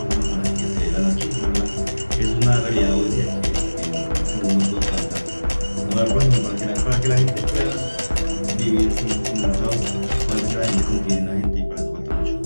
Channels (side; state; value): both; inverted; correlation -1.00